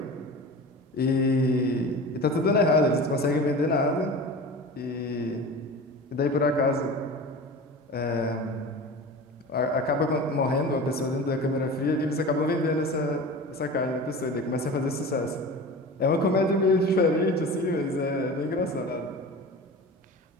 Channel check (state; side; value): normal; both; correlation 0.34